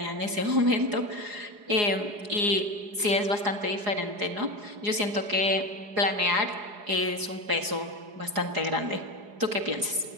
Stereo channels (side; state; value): left; late; 4.8 ms